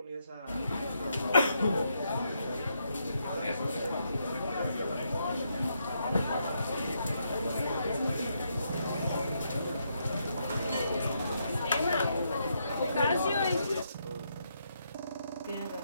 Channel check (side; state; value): both; inverted; correlation -0.78